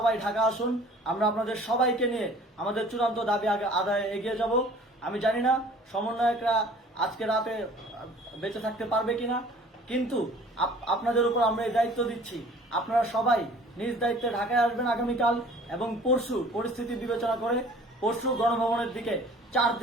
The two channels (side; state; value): both; normal; correlation 0.50